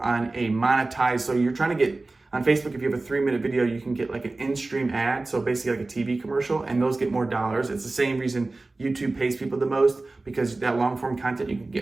a monetized. So you're trying to get on Facebook, if you have a 3-minute video, you can get like an in-stream ad, so basically like a TV commercial, and those get more dollars. It's the same reason YouTube pays people the most, because that long-form content, you can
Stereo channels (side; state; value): left; quieter; 3.2 dB